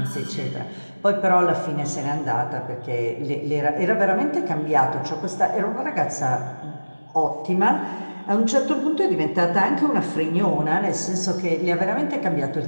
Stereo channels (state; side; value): inverted; both; correlation -1.00